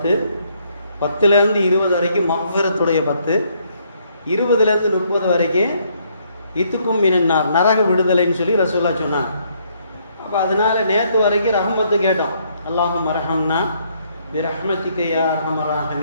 10லேருந்து 20 வரைக்கும் மஃபிரத்துடைய 10, 20லேருந்து 30 வரைக்கும் இத்துக்கும் மினன்னார் நரக விடுதலைன்னு சொல்லி ரசூலுல்லாஹ் சொன்னாங்க. அப்போ அதனால் நேற்று வரைக்கும் ரஹ்மத்து கேட்டோம். அல்லாஹும் அரஹம்னா பி ரஹ்மதிக யா அர்ஹமர்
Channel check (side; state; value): both; inverted; correlation -0.69